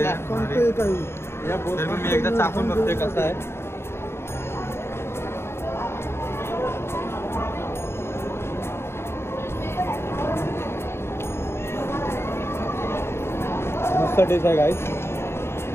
आहे. तर मी एकदा चाकून बघते कसं आहे. मस्त टेस्ट आहे गाईस.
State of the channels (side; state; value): right; late; 0.12 ms